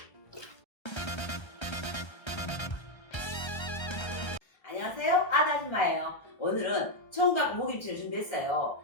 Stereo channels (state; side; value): late; right; 1.3 ms